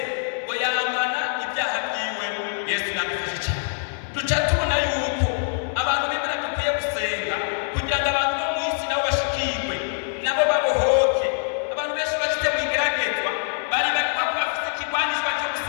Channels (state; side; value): silent; right; 62 dB below the other